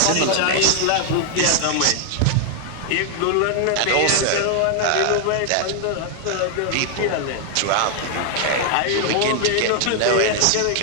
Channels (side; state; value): both; different; correlation 0.00